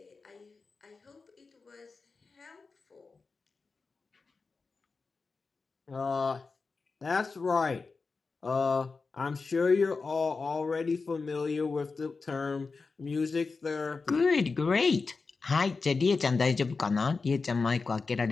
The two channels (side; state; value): right; quieter; 4.3 dB